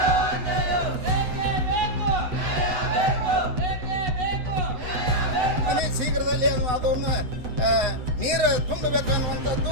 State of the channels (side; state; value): left; late; 8.1 ms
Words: ಶೀಘ್ರದಲ್ಲಿ ಅದನ್ನು ನೀರು ತುಂಬಬೇಕು